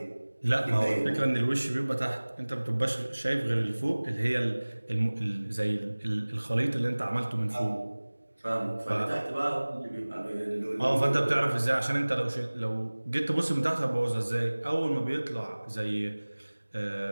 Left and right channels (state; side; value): inverted; both; correlation -1.00